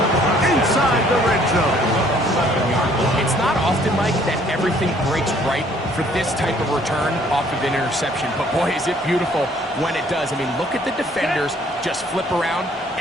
inside the red zone. It's not often, Mike, that everything breaks right for this type of return off of an interception. But boy, is it beautiful when it does. I mean, look at the defenders just flip around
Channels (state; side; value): normal; both; correlation 0.60